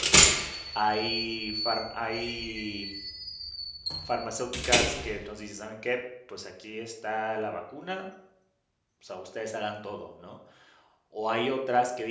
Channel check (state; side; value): identical; both; correlation 1.00